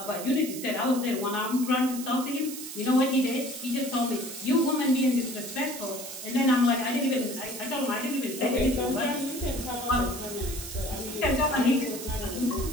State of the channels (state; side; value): noise; right; hiss, 10 dB below the sound